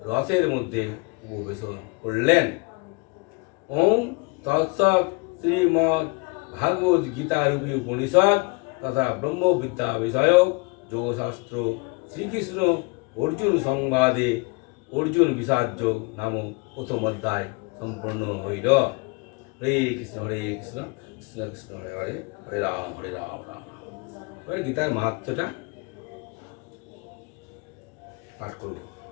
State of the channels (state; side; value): quieter; right; 30.8 dB